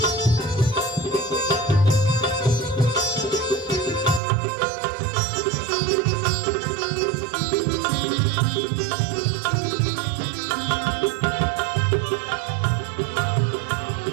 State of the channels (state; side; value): drops out; left; at 4.2 s